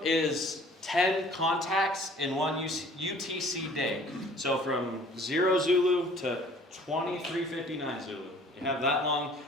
is 10 contacts in one UTC day. So from 0 Zulu to 23:59 Zulu. You have that long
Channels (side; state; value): both; normal; correlation 0.52